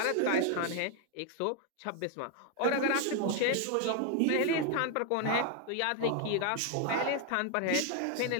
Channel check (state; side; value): different; both; correlation 0.00